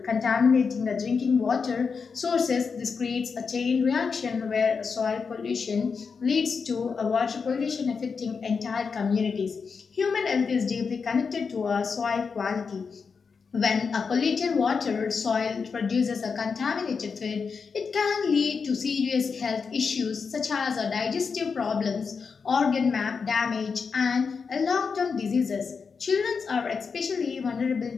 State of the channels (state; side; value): quieter; right; 5.4 dB